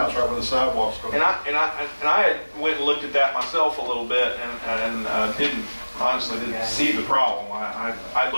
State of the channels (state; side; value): inverted; both; correlation -1.00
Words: right where the sidewalks go. And I had went and looked at that myself a little bit and honestly didn't see the problem. I